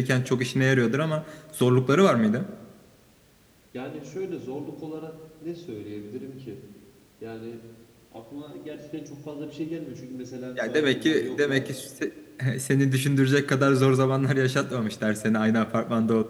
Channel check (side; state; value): both; identical; correlation 1.00